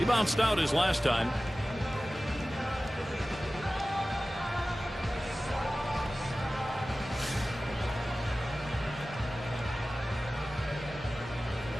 bounced out his last time.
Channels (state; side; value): normal; both; correlation 0.96